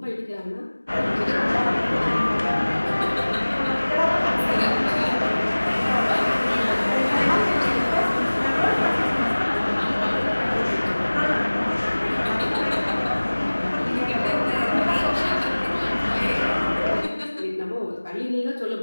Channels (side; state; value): both; inverted; correlation -1.00